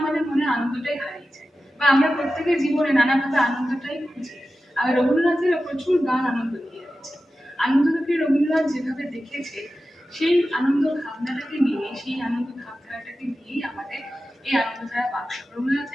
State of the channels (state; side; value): normal; both; correlation 0.93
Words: মনে আনন্দটাই হারিয়ে যায় বা আমরা প্রত্যেকের জীবনে নানাভাবে আনন্দটাই খুঁজি। আর রবীন্দ্রনাথের প্রচুর গান আনন্দ দিয়ে গেছে। আনন্দটাকে রবীন্দ্রনাথ যেভাবে দেখেছে, সেই আনন্দ ভাবনাটাকে নিয়ে, সেই আনন্দ ভাবধারাটাকে নিয়েই আমাদের এই আনন্দধারা বাক্স।